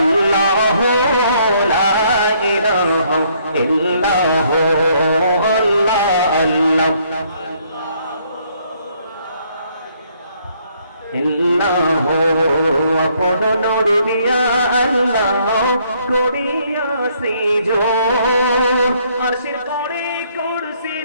লা ইলাহা ইল্লাল্লাহ আল্লাহ আল্লাহ ইল্লাহ আপন নূর দিয়া আল্লাহ করিয়া সৃজন, আরশের করে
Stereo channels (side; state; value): both; inverted; correlation -0.67